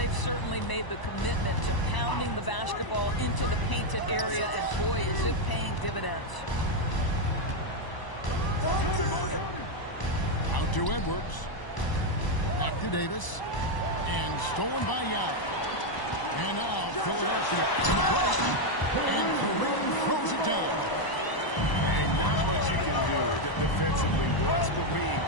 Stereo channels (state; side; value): late; right; 1.0 ms